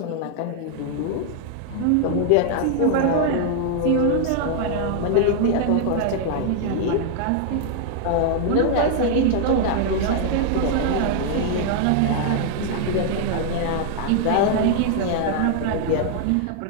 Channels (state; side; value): different; both; correlation 0.00